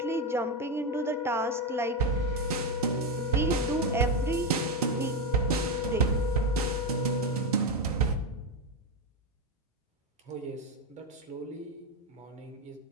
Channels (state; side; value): normal; both; correlation 0.10